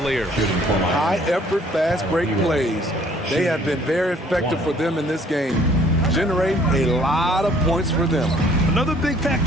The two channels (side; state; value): both; normal; correlation 0.58